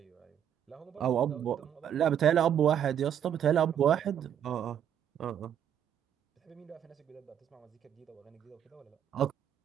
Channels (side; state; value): left; quieter; 9.5 dB